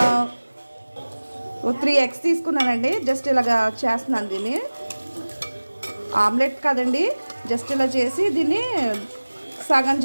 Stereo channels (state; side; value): inverted; both; correlation -1.00